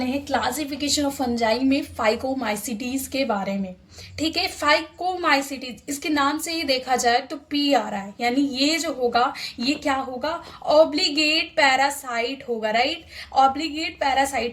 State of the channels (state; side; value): identical; both; correlation 1.00